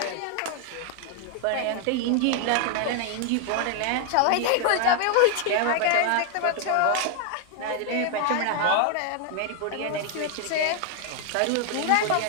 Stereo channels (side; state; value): both; different; correlation 0.00